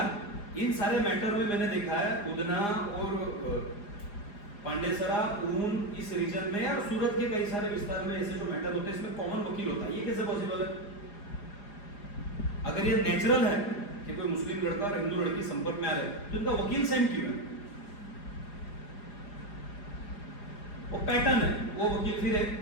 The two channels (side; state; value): right; late; 4.9 ms